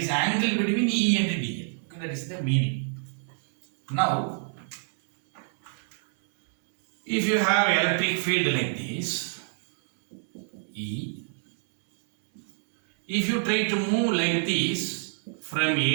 angle between E and dl. Okay, that is the meaning. Now, if you have electric field like this, E, if you try to move like this from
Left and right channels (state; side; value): silent; left; 60 dB below the other